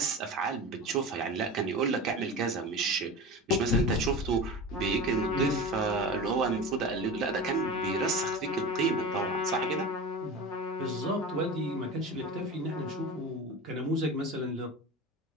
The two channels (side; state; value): both; normal; correlation 0.30